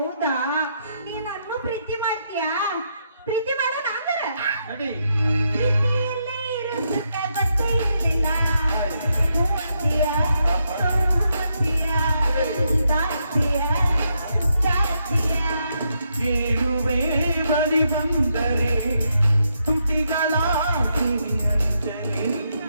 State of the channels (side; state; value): both; inverted; correlation -0.79